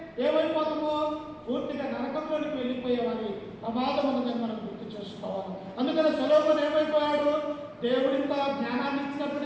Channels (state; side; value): identical; both; correlation 1.00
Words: ఏమైపోతామో, పూర్తిగా నరకంలోనికి వెళ్ళిపోయేవారి ప్రమాదం ఉన్నదని మనం గుర్తు చేసుకోవాలి. అందుకని సొలొమోను ఏమైపోయాడు, దేవుడింత జ్ఞానాన్ని